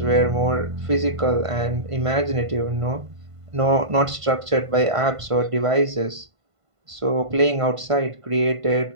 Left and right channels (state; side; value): late; left; 1.5 ms